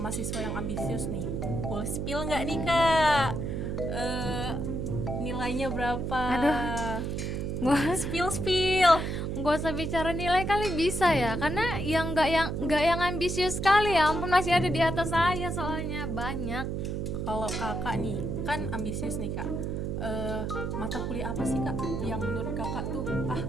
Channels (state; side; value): noise; right; hum, 2 dB below the sound